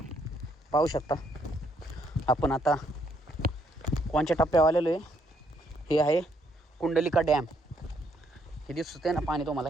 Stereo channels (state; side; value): normal; both; correlation 0.71